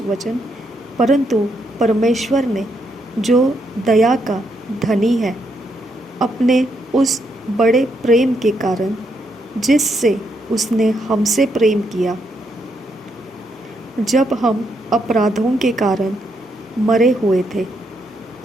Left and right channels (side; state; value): both; normal; correlation 0.77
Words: वचन। परंतु परमेश्वर ने जो दया का धनी है, अपने उस बड़े प्रेम के कारण जिससे उसने हमसे प्रेम किया, जब हम अपराधों के कारण मरे हुए थे,